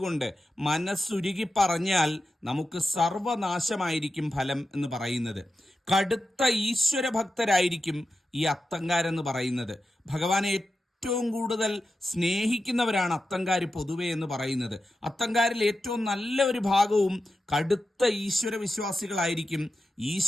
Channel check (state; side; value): normal; both; correlation 0.91